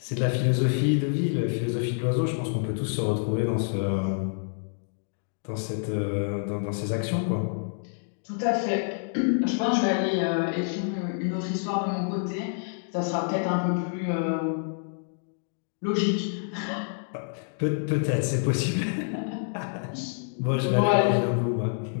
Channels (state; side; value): silent; right; digital silence